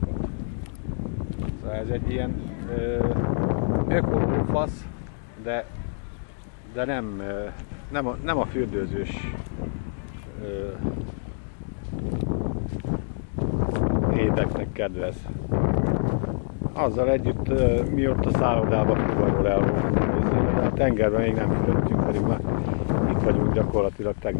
Szóval ez egy ilyen ökolófasz, de nem a fürdőzős éteknek kedvez. Azzal együtt mi ott a szállodába fuvarról el voltunk, de a tengerben még nem fürödtünk, pedig már itt vagyunk gyakorlatilag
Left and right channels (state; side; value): silent; right; digital silence